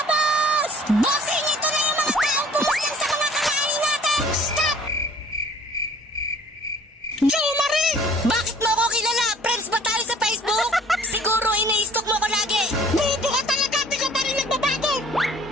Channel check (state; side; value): normal; both; correlation 0.52